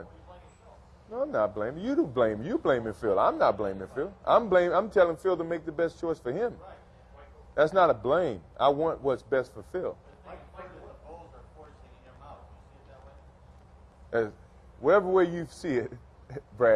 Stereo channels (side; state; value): both; identical; correlation 1.00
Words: you blaming Phil. No, I'm not blaming. You do blame. You blaming Phil. I'm not blaming Phil. I'm telling Phil to make the best choice for him. That's not a blame. I want what's best for Phil. Mike, the Bulls are forcing him out. You see it that way? Whatever way you see it,